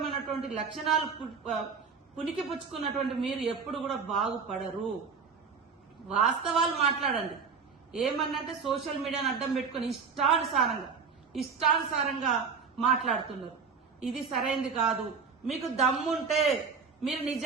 లక్షణాలు పునికి పుచ్చుకున్నటువంటి మీరు ఎప్పుడు కూడా బాగుపడరు. వాస్తవాలు మాట్లాడండి. ఏమన్నంటే సోషల్ మీడియాను అడ్డం పెట్టుకుని ఇష్టానుసారంగా మాట్లాడుతున్నారు. ఇది సరైనది కాదు. మీకు దమ్ముంటే, మీరు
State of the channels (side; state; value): left; quieter; 5.5 dB